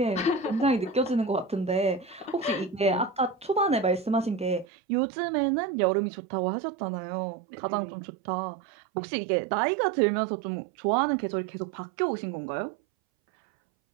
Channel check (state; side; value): drops out; left; at 4.7 s